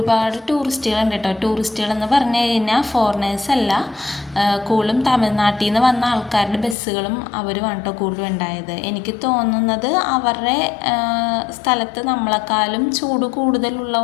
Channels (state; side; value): drops out; right; at 6.8 s